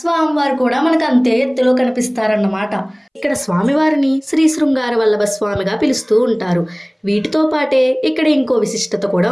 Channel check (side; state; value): both; identical; correlation 1.00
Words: స్వామివారు కూడా మనకు అంతే ఎత్తులో కనిపిస్తారన్నమాట. ఇక్కడ స్వామివారిని శ్రీ శృంగార వల్లభ స్వామిగా పిలుస్తూ ఉంటారు. వీటితో పాటే ఇక్కడ ఇంకో విశిష్టత కూడా